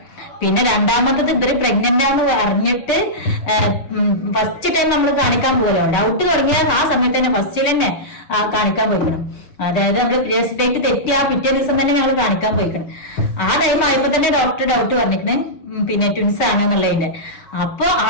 പിന്നെ രണ്ടാമത്തത് ഇവര് പ്രഗ്നന്റ് ആണെന്ന് അറിഞ്ഞിട്ട് ഫസ്റ്റ് ടൈം നമ്മൾ കാണിക്കാൻ പോകലോ, ഡൗട്ട് തുടങ്ങിയ ആ സമയത്ത് തന്നെ ഫസ്റ്റിൽ തന്നെ കാണിക്കാൻ പോയിക്കണം. അതായത് നമ്മൾ പീരിയഡ്സ് ഡേറ്റ് തെറ്റിയ പിറ്റേ ദിവസം തന്നെ ഞങ്ങൾ കാണിക്കാൻ പോയിക്കണം. ആ ടൈം ആയപ്പോ തന്നെ ഡോക്ടർ ഡൗട്ട് പറഞ്ഞിരിക്കണേ പിന്നെ ട്വിൻസ് ആണെന്നുള്ളതിന്റെ. അപ്പൊ ആ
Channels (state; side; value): late; right; 6.4 ms